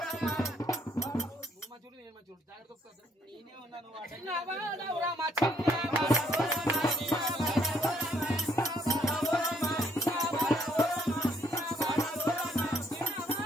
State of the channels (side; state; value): both; normal; correlation 0.67